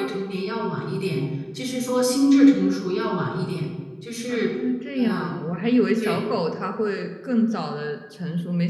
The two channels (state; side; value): identical; both; correlation 1.00